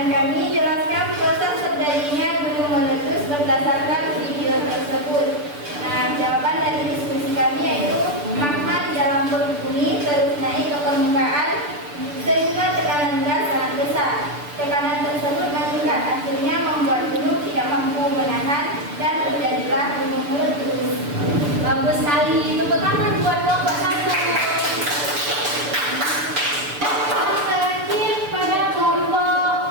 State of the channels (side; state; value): left; late; 6.8 ms